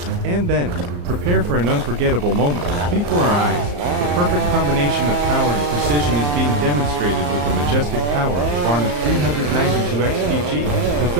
And then, prepare for an unforgettable moment. Before our eyes, the perfect combination of power and precision is being demonstrated with the majestic power of the Varna 392XPG. The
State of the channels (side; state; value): left; late; 34 ms